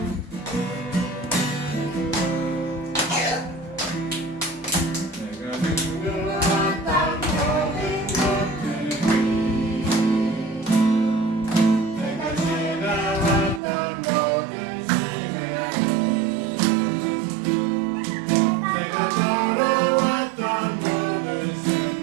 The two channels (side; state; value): left; drops out; at 13.6 s